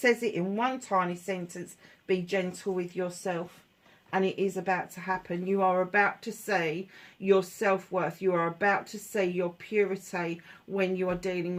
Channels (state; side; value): identical; both; correlation 1.00